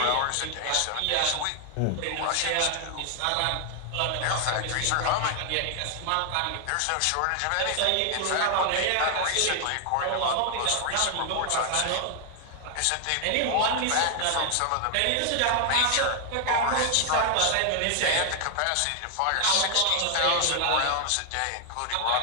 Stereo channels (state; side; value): different; both; correlation 0.00